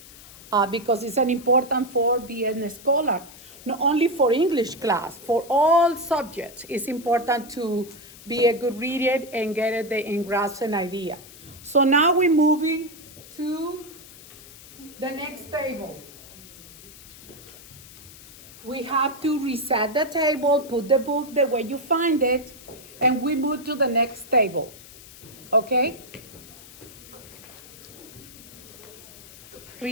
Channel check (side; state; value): left; noise; hiss, 19 dB below the sound